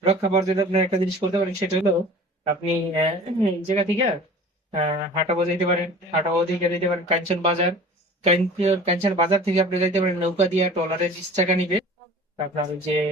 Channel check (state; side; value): normal; both; correlation 0.43